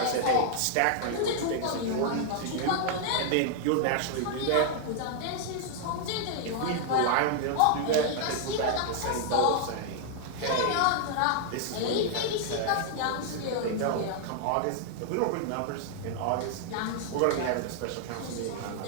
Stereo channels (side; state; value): both; different; correlation 0.00